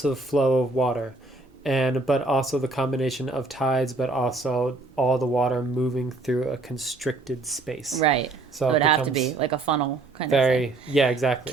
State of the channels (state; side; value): quieter; left; 3.2 dB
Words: flow of water. But also the combination of tides, but also all the water moving through a constricted space. Right. So it would have to be like a funnel kind of thing. Yeah, exactly.